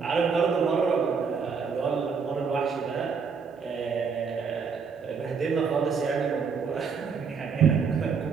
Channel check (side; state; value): left; quieter; 5.7 dB